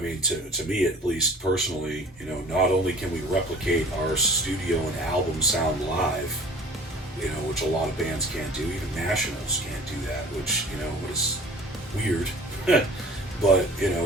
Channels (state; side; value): normal; both; correlation 0.45